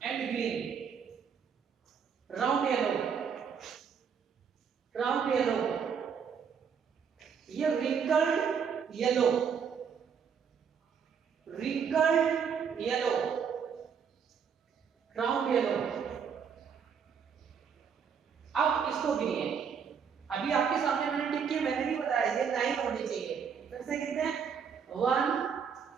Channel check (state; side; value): quieter; left; 6.9 dB